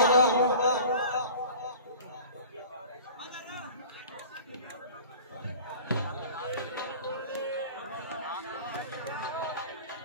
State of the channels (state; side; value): inverted; both; correlation -0.41